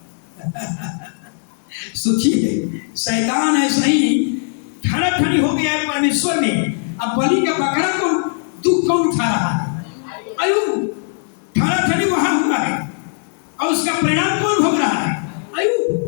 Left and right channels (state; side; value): silent; right; 65 dB below the other